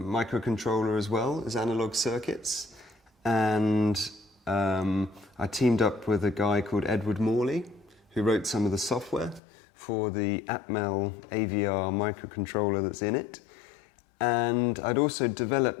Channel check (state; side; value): drops out; right; at 9.4 s